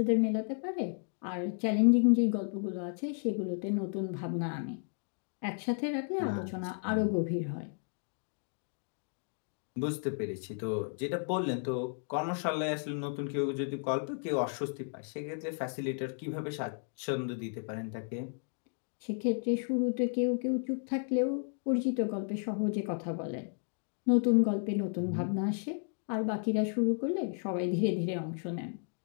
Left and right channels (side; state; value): right; silent; 56 dB below the other